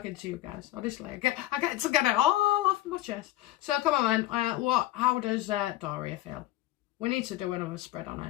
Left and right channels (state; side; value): quieter; right; 15.6 dB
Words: to you guys, honestly. I get to get it all off my chest. So, come on then. How does Doria feel? We need to do another spread on